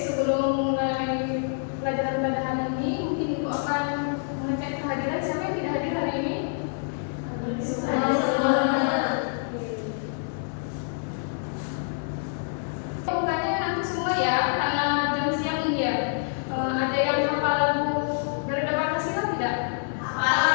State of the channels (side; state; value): right; silent; 61 dB below the other